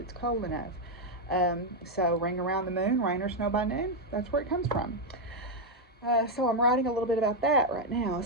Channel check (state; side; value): normal; both; correlation 0.01